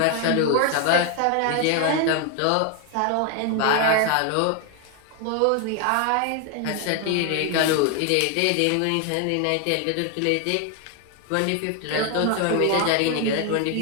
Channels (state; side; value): different; both; correlation 0.01